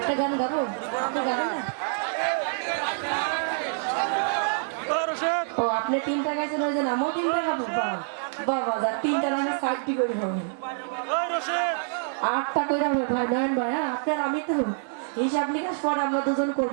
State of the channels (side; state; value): left; silent; digital silence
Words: গান গাবো, ও আপনি তিনটা গাইছেন ওই যে আমিও তিনটা গাবো। বাবা যা তিনটা রান্না সাইডটি করে হবে, 8টা করে হবে ভাই। নয়ন ভাই, আপনার আমি তো হিসাব নিকাশ পরে আমরা দুজন